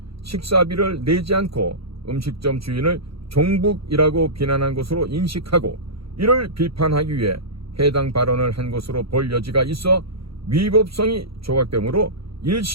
식사비를 내지 않고 음식점 주인을 종북이라고 비난한 것으로 인식하고 이를 비판하기 위해 해당 발언을 한 것으로 볼 여지가 있어 위법성이 조각되므로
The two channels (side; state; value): left; late; 0.75 ms